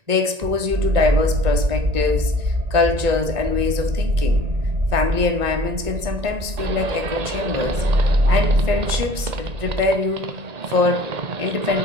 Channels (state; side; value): late; left; 1.9 ms